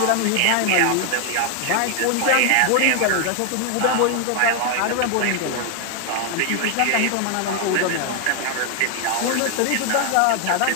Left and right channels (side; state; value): both; different; correlation 0.00